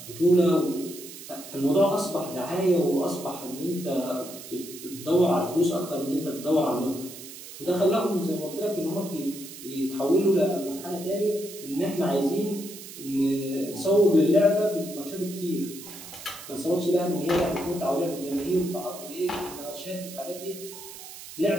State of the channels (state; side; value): noise; right; hiss, 14 dB below the sound